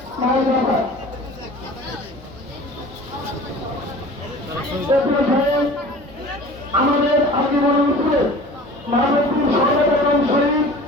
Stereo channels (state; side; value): normal; both; correlation 0.42